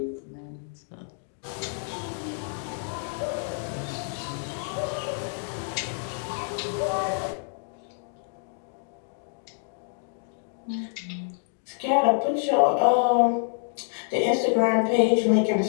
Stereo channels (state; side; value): silent; right; 60 dB below the other